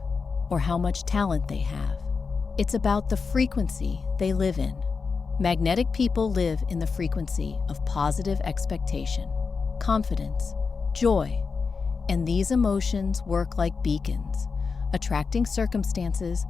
or how much talent they have. It's about the frequency they live in. Magnetic people live in the frequency of positive expectation, confidence, joy, and these emotions work like beacons, attracting circumstances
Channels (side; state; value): right; quieter; 5.0 dB